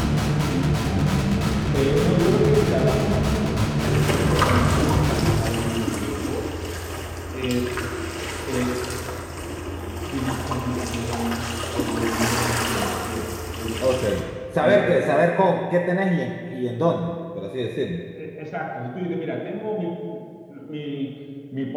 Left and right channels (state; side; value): identical; both; correlation 1.00